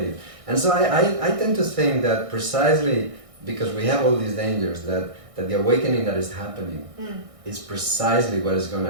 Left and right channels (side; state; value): left; late; 1.6 ms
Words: And so I tend to think that precisely because we have all these dangers, that the awakening that is happening is precisely what is going